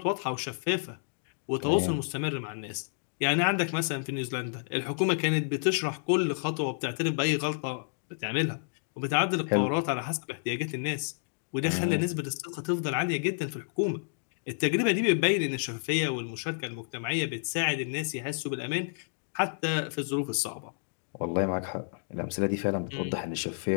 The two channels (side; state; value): right; silent; digital silence